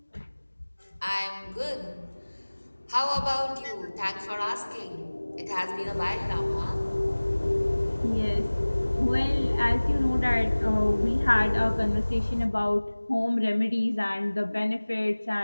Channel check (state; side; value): inverted; both; correlation -1.00